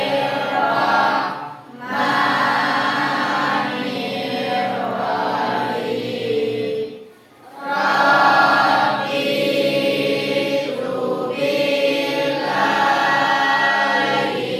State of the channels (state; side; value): identical; both; correlation 1.00